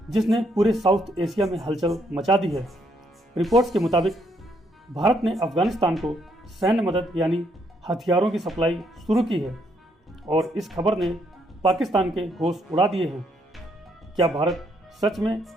जिसने पूरे साउथ एशिया में हलचल मचा दी है। रिपोर्ट्स के मुताबिक भारत ने अफगानिस्तान को सैन्य मदद यानी हथियारों की सप्लाई शुरू की है और इस खबर ने पाकिस्तान के होश उड़ा दिए हैं। क्या भारत सच में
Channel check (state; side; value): normal; both; correlation 0.72